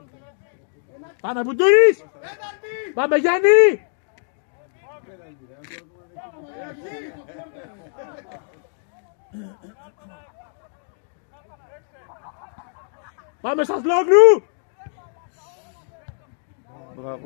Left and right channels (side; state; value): right; silent; digital silence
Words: Πάμε Μπουντούρης! Πάμε Γιάννη! Πάμε στα Σλόγλου!